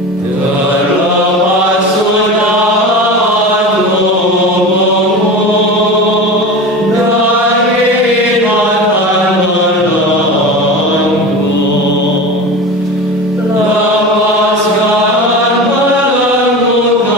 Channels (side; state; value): both; normal; correlation 0.30